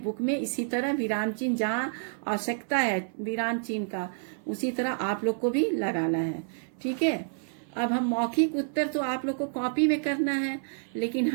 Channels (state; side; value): silent; left; 59 dB below the other